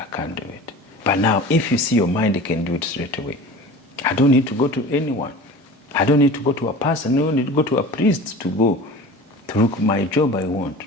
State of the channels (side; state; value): both; normal; correlation 0.38